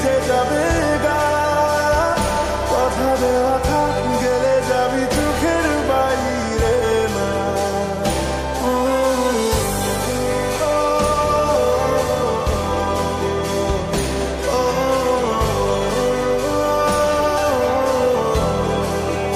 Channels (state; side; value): identical; both; correlation 1.00